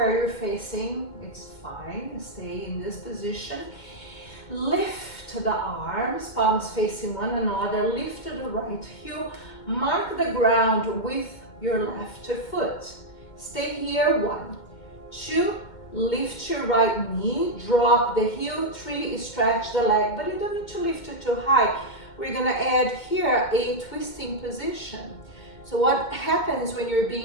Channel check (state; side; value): late; right; 2.1 ms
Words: you're facing. It's fine, stay in this position. Lift the arms, palms facing one another. Lift to the right heel. Mark the ground with your left foot. Stay here, 1, 2, lift your right knee, drop the heel, 3, stretch the leg, but you don't need to lift it too high. We're gonna add here a twisting position. So what happens when you're